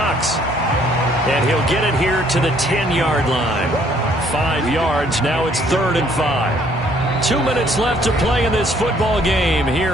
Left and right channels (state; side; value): normal; both; correlation 0.63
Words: And he'll get it here to the 10-yard line. 5 yards, now it's 3rd and 5. 2 minutes left to play in this football game here